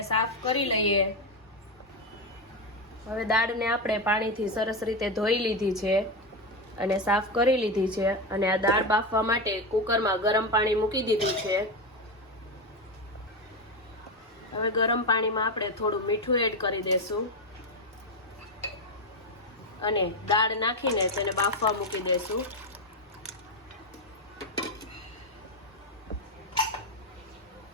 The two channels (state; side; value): normal; both; correlation 0.12